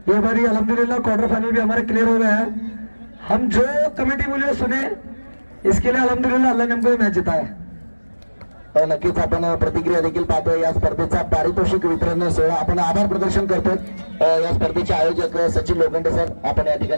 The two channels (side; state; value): both; inverted; correlation -1.00